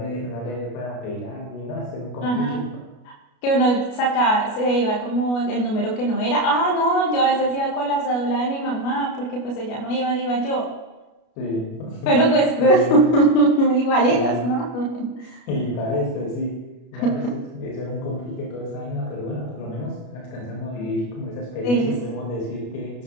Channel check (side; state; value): right; late; 33 ms